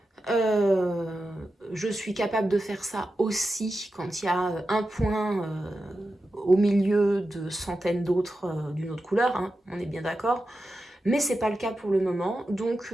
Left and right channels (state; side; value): normal; both; correlation 0.91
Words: Euh, je suis capable de faire ça aussi quand il y a un point au milieu de centaines d'autres d'une autre couleur, hein, on est bien d'accord. Mais c'est pas le cas pour le moment, donc